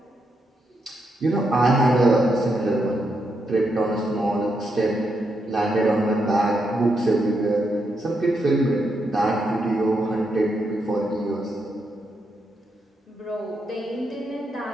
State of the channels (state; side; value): normal; both; correlation 0.81